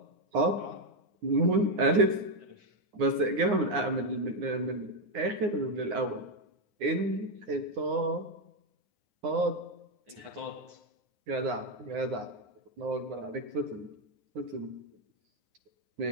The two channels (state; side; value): late; left; 9.7 ms